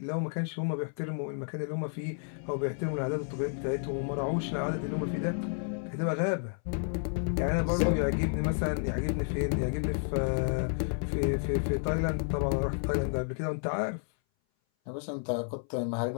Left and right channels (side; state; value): right; silent; 57 dB below the other